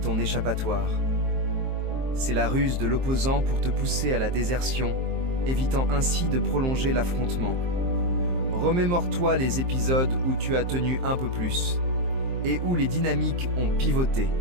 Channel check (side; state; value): left; late; 23 ms